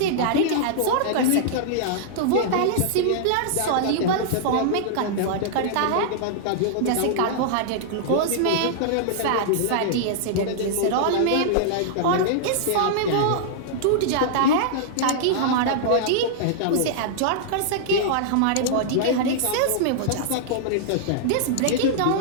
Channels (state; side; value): different; both; correlation -0.01